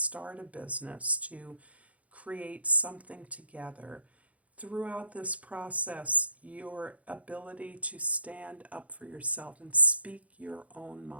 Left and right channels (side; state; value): left; late; 0.067 ms